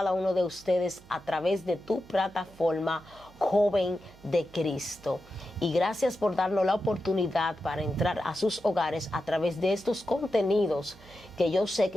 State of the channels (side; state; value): right; noise; hum, 24 dB below the sound